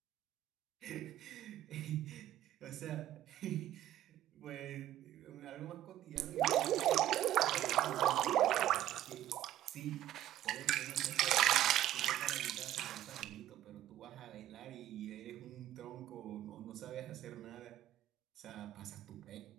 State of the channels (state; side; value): quieter; left; 12.9 dB